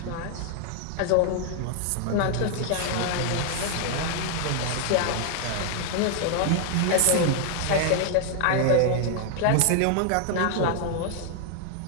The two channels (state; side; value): different; both; correlation 0.00